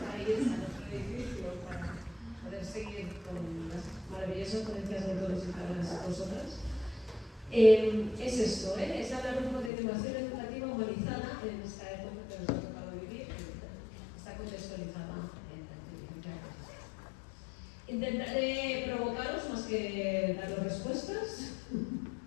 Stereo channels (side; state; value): right; drops out; at 9.7 s